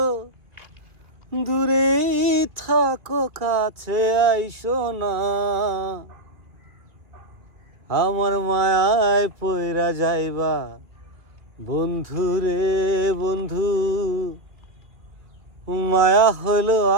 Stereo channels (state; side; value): late; left; 2.4 ms